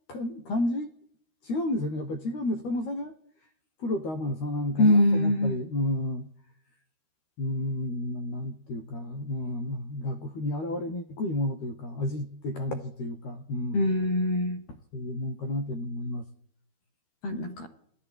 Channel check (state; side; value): late; right; 13 ms